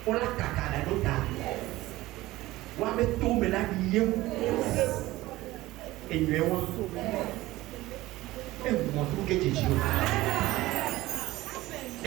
on la caca la nota wa me tombe la lieu et nous et moi tout que Jésus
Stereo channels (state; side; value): quieter; left; 17.7 dB